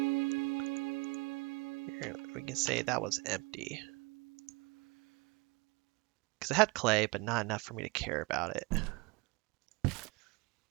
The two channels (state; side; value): quieter; left; 26.4 dB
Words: Here, we can say that was empty. Because it had clay, but not enough for me to care about it.